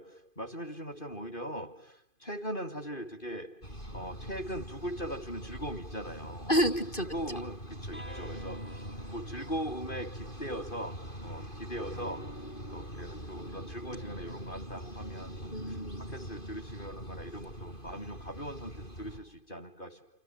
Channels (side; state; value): right; late; 2.5 ms